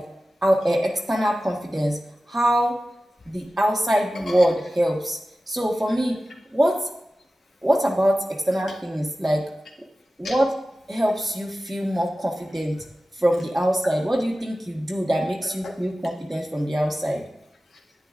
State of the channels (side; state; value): both; normal; correlation 0.95